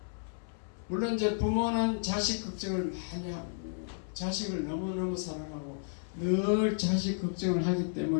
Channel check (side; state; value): right; silent; 56 dB below the other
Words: 물론 이제 부모는 자식 걱정을 많이 하고 자식을 너무너무 사랑하고 늘 자식 걱정을 하기